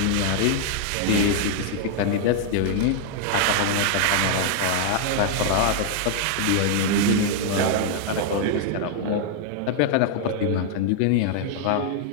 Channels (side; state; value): both; different; correlation -0.01